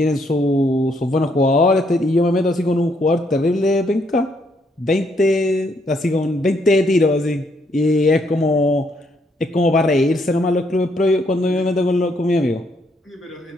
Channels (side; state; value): both; normal; correlation 0.72